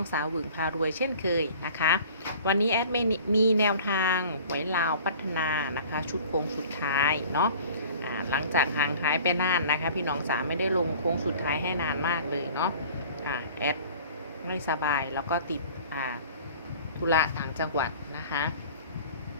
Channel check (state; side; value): inverted; both; correlation -0.46